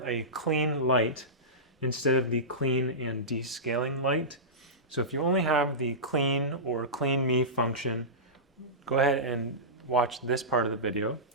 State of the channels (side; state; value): both; normal; correlation -0.17